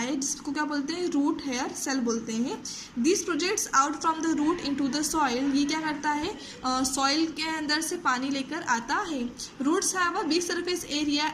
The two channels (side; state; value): both; identical; correlation 1.00